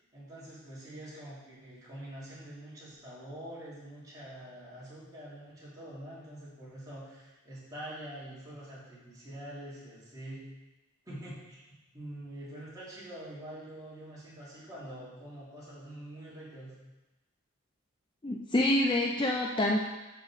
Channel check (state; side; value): normal; both; correlation 0.54